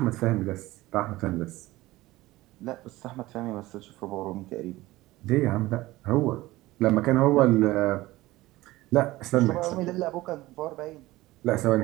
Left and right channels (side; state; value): left; quieter; 18.3 dB